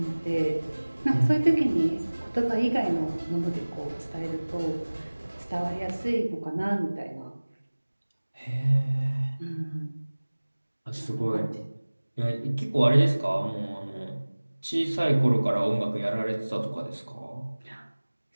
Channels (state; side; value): inverted; both; correlation -1.00